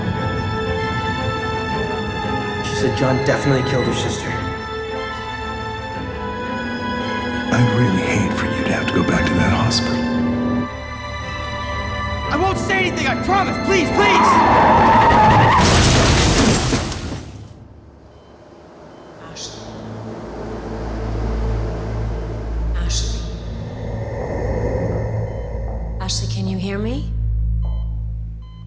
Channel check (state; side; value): identical; both; correlation 1.00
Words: She said John definitely killed her sister. I'd really hate for you to have to go back to that hospital. I won't say anything, I promise! Please, please! Ashley, can you hear me?